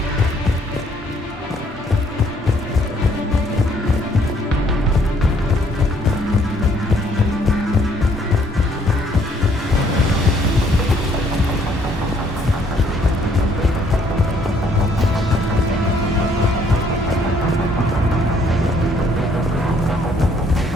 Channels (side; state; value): both; normal; correlation 0.65